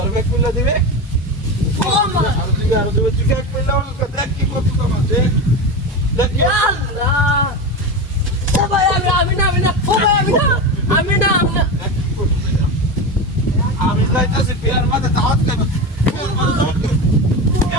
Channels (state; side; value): normal; both; correlation 0.21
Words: ব্যাগ খুলে দিবে ও মা আর দিবে তুই ব্যাগ খুলে দেখ কি করছিস তোমার দেখ দেখ কি আল্লাহ ও ভাই আমি না ও ভাই আমি না আমি যাইতাছি বিয়ার মাঝে দাওয়াত খাবে